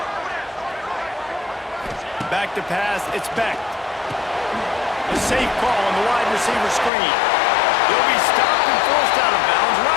Back to pass, it's Beck. A safe call on the wide receiver screen. He'll be stopped and forced out of bounds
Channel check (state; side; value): drops out; right; at 6.9 s